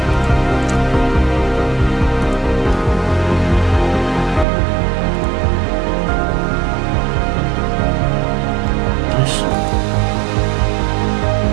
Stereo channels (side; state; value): left; drops out; at 4.5 s